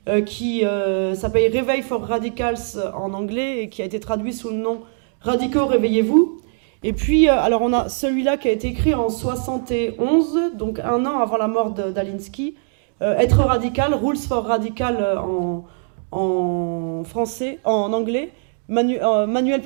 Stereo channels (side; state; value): left; silent; 65 dB below the other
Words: qui s'appelle Réveil for Radicals en anglais et qui a été traduit sous le nom Radicaux, réveillez-vous. Et puis, alors on a celui-là qui a été écrit en 71, donc 1 an avant la mort d'Alinsky, Être radical, Rules for Radical en français, en anglais, manuel